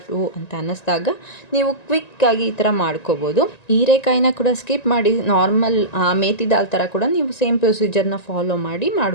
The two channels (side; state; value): right; late; 1.9 ms